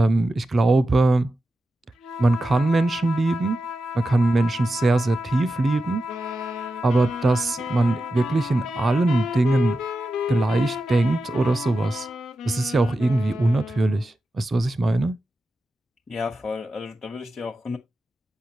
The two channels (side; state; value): both; normal; correlation 0.91